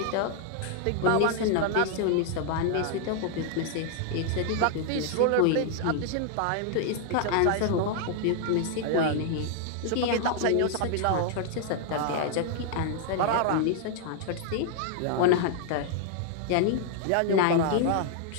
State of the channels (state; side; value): different; both; correlation 0.00